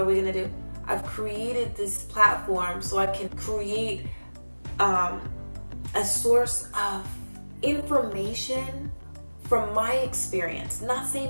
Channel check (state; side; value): inverted; both; correlation -1.00